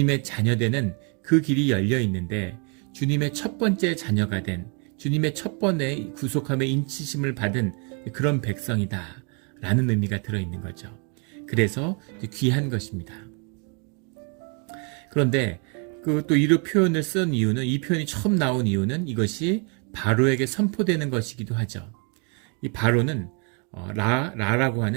자녀되는 그 길이 열려 있는데 주님의 첫 번째 자녀가 된 주님의 첫 번의 구속함의 인치심을 받은 그런 백성이다 라는 의미가 들어있는 거죠. 그래서 귀한 것입니다. 그런데 그 또 이런 표현을 쓴 이유는 이 표현이 처음 나온 이유는 이것이 바로에게 선포되는 것이기도 하죠. 이 바로는 라라고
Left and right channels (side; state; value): left; quieter; 35.4 dB